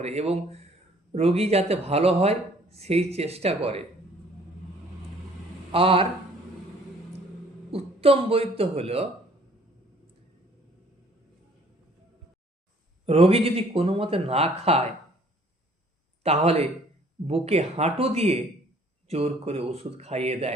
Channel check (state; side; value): normal; both; correlation 0.58